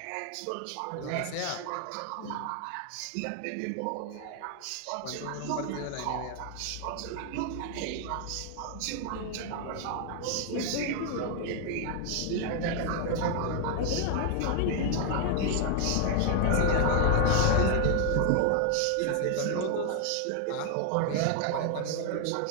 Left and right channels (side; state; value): both; different; correlation 0.00